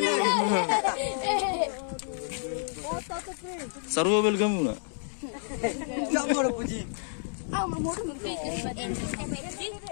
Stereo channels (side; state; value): right; silent; digital silence